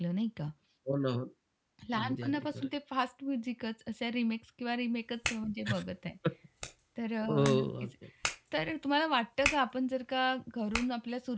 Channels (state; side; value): identical; both; correlation 1.00